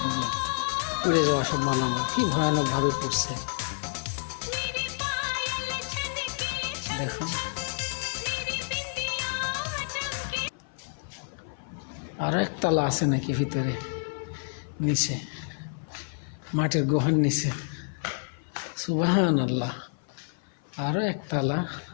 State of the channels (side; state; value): right; silent; 55 dB below the other